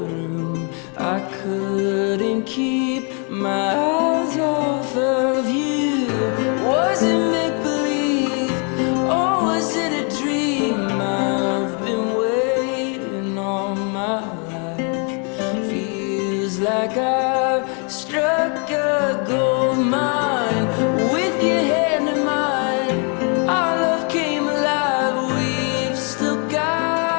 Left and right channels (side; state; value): right; quieter; 37.9 dB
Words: room, I couldn't keep my eyes off of you. Was it make-believe, or was it a dream? I've been waiting all my life. Feels like I've struck a gold mine. With your hand in mine, our love came alive. We've still